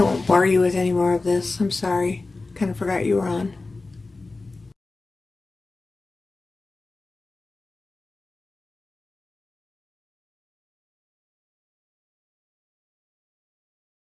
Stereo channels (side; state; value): right; quieter; 3.5 dB